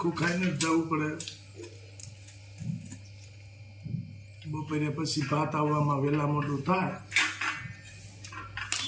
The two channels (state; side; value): identical; both; correlation 1.00